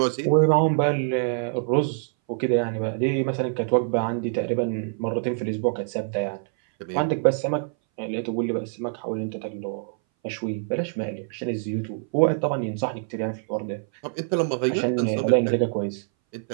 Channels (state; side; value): silent; left; 60 dB below the other